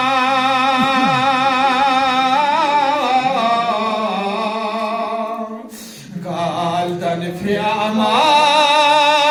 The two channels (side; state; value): both; identical; correlation 1.00